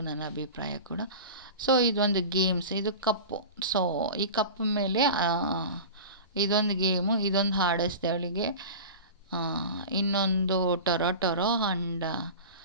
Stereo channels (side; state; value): both; inverted; correlation -0.32